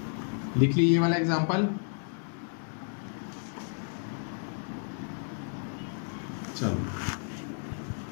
लिख ली ये वाला एग्जांपल। चलो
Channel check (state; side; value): silent; right; 57 dB below the other